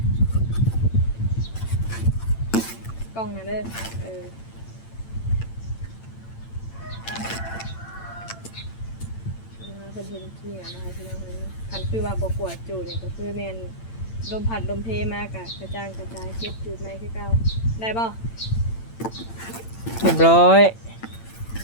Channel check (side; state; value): right; late; 8.8 ms